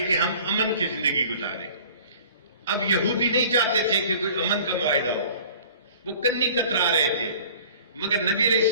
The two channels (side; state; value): both; inverted; correlation -0.47